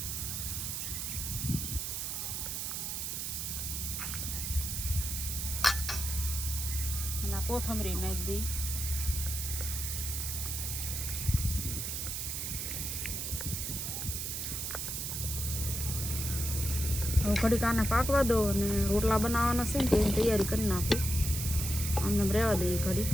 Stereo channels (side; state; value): right; noise; hiss, 3 dB below the sound